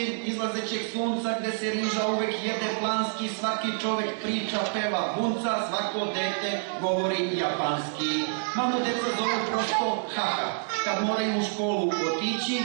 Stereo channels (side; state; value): left; silent; 60 dB below the other